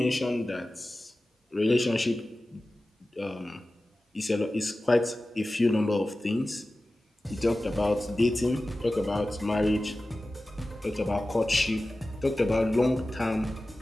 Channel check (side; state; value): both; normal; correlation 0.96